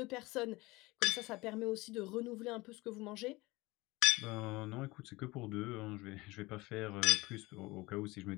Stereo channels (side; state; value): right; quieter; 21.7 dB